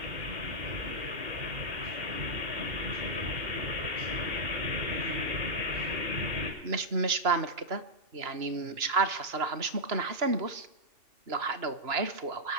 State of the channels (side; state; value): left; late; 2.9 ms